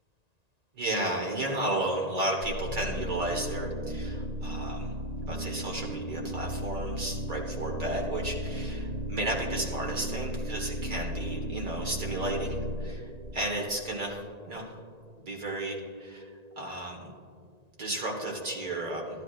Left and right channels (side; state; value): left; late; 1.9 ms